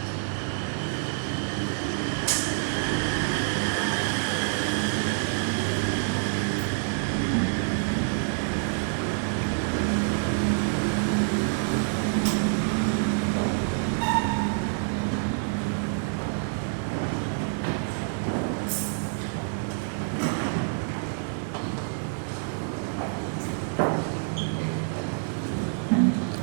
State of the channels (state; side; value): silent; left; digital silence